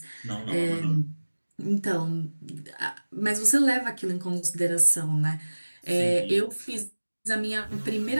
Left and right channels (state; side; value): inverted; both; correlation -1.00